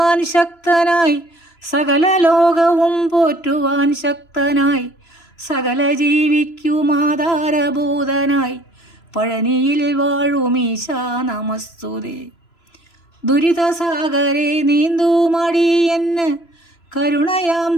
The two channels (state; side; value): late; right; 3.0 ms